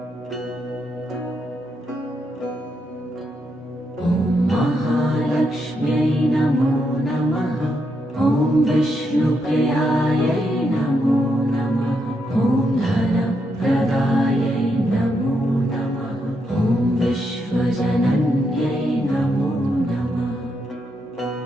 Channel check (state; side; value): normal; both; correlation 0.80